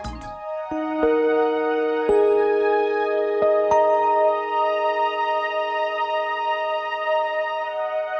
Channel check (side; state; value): both; identical; correlation 1.00